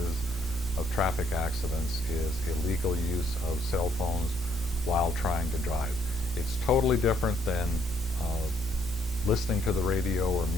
of traffic accidents, is illegal use of cell phones while trying to drive. It's totally different than listening to the radio or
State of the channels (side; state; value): both; normal; correlation 0.69